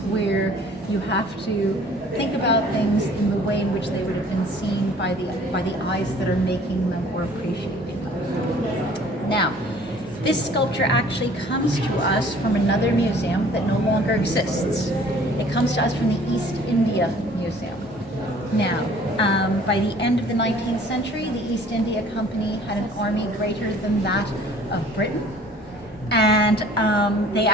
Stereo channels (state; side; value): normal; both; correlation 0.53